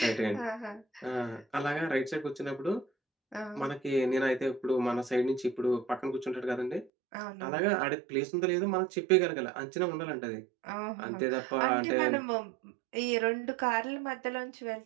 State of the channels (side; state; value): left; drops out; at 6.9 s